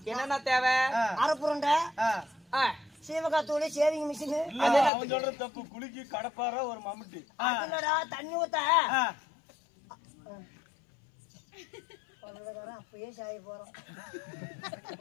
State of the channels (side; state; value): right; drops out; at 4.9 s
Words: என்னன்னா தேவை அரைப்புரண்டை சீவகாத்தூளி சேவிங் மிஷின் தப்பு குளிக்கி கடப்பார ஒரு மம்முட்டி அதுலடா தண்ணி ஊத்த அப்பயே சாய போறோம்